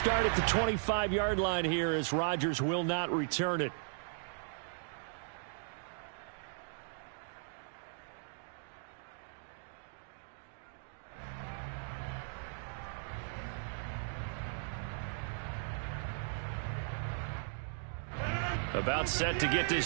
at the 25-yard line here as Rodgers will not return it. About set to get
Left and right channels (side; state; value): left; silent; digital silence